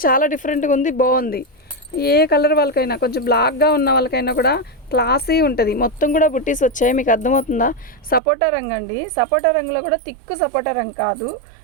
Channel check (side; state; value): left; drops out; at 8.2 s